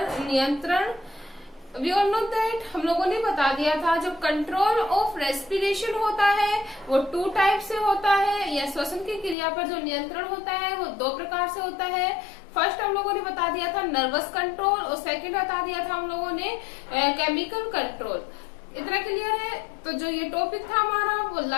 नियंत्रण। वी ऑल नो दैट हम लोगों ने बता दिया था जो कंट्रोल ऑफ रेस्पिरेशन होता है वो 2 टाइप से होता है, या श्वसन की क्रिया पर जो नियंत्रण होता है वो 2 प्रकार से होता है। फर्स्ट हम लोगों ने बता दिया था नर्वस कंट्रोल और सेकंड बता दिया था हम लोगों ने केमिकल कंट्रोल। इतना क्लियर है? तो जो ये टॉपिक था हमारा वो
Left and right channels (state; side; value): drops out; right; at 9.3 s